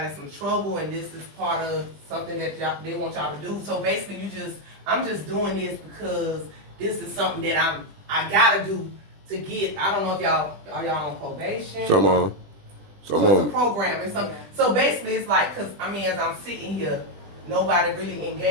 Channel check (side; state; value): left; late; 20 ms